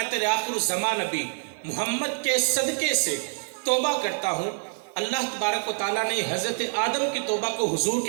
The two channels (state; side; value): silent; left; digital silence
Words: تیرے آخر الزمان نبی محمد کے صدقے سے توبہ کرتا ہوں۔ اللہ تبارک و تعالیٰ نے حضرت آدم کی توبہ کو حضور